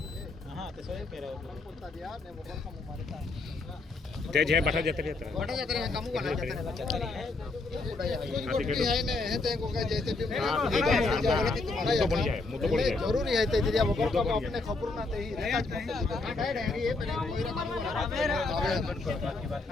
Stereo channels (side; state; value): right; quieter; 3.5 dB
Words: તે જે બટા જતે રહેતા બટા જતે રહે કામુ બના જતે રહે है ने है ते को का जैसे भी तो बन जाए मुद्दो बन जाए जरूरी है ते दिया बगर को अपने खबर ना ते ही काट काट है ये पहले कोई रा कामु